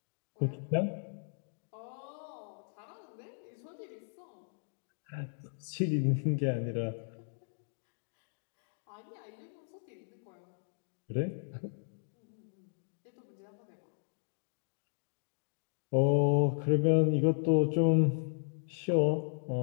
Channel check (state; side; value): silent; right; digital silence